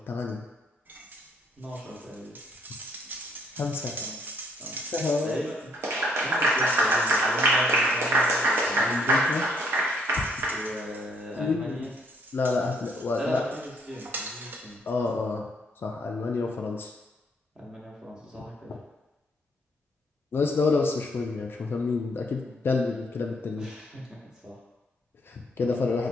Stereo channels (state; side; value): normal; both; correlation 0.67